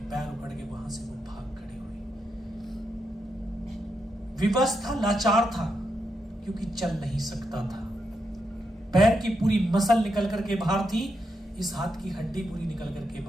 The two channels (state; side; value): normal; both; correlation 0.83